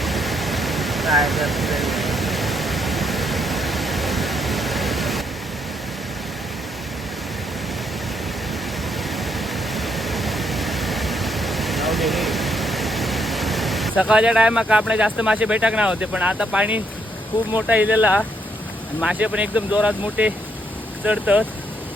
सकाळच्या टायमाक आपले जास्त मासे भेटक नाही होते पण आता पाणी खूप मोठा इलेला आणि मासे पण एकदम जोरात मोठे चढतात.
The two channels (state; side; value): normal; both; correlation 0.74